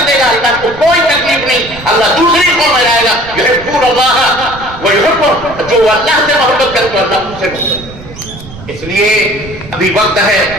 دے گا, اللہ کو کوئی تکلیف نہیں, اللہ دوسری قوم میں لائے گا. یحبون اللہ ویحبون, جو اللہ سے محبت کرے تو اللہ ان سے محبت. اس لیے ابھی وقت ہے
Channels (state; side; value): noise; right; rumble, 16 dB below the sound